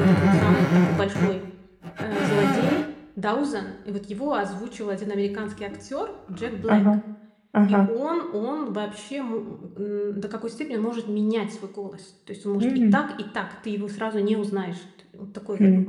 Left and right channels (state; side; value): identical; both; correlation 1.00